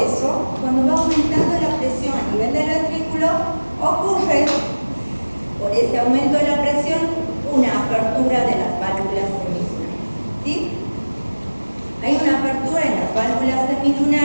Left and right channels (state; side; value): inverted; both; correlation -1.00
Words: cuando va aumentando la presión a nivel del ventrículo, ocurre, por ese aumento de la presión, una apertura de las válvulas semilunares, ¿sí? Hay una apertura en las válvulas